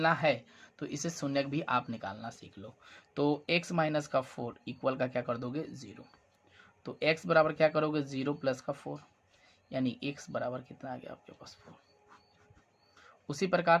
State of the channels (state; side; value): identical; both; correlation 1.00